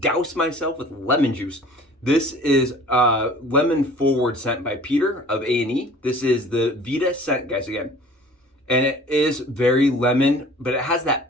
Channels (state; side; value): normal; both; correlation 0.47